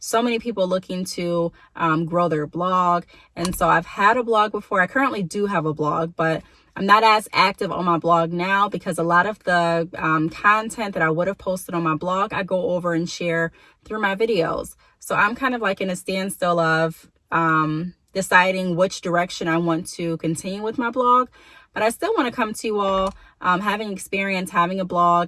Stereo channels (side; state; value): both; identical; correlation 1.00